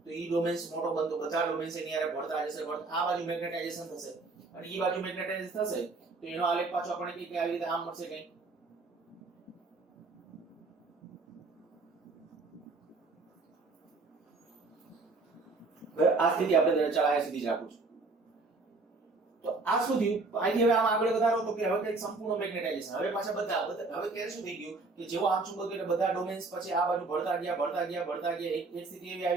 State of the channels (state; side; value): quieter; left; 3.6 dB